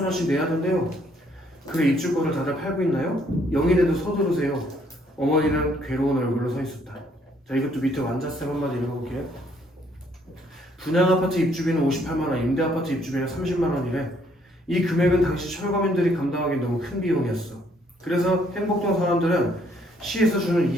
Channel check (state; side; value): normal; both; correlation 0.67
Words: 내야 된대요. 그래 입주권을 다들 팔고 있나요? 영인에도 서두르세요. 어머니는 괴로운 얼굴로 서 있었다. 자 이것도 밑에 완자쌤 한마디 읽어볼게요. 분양 아파트 입주비는 58만 원, 임대 아파트 입주비는 30만 원이래. 이 금액은 당시 철거민들이 감당하기 너무 큰 비용이었어. 그래서 행복동 사람들은 시에서 주는